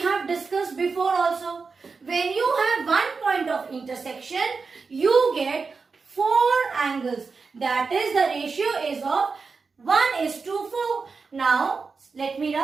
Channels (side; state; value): left; quieter; 4.7 dB